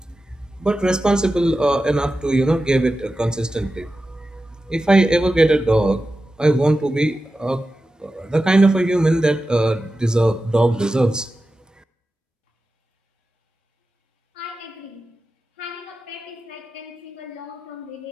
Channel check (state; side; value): normal; both; correlation 0.93